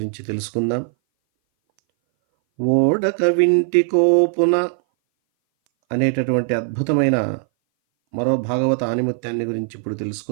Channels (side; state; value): left; silent; 60 dB below the other